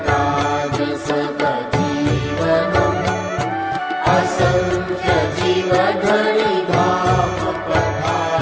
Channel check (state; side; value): identical; both; correlation 1.00